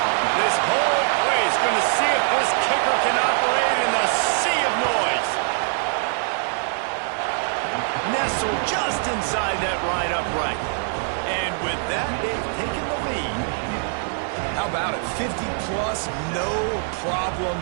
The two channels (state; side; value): silent; left; 57 dB below the other